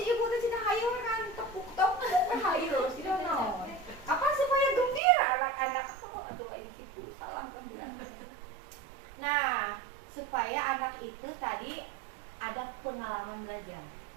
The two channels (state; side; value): drops out; left; at 5.0 s